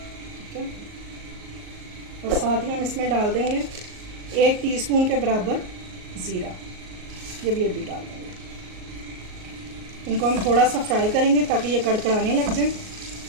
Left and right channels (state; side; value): late; left; 38 ms